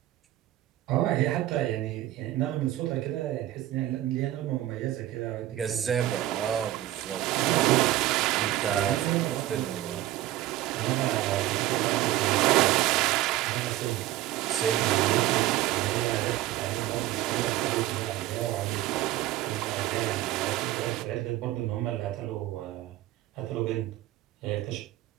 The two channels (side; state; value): left; quieter; 14.6 dB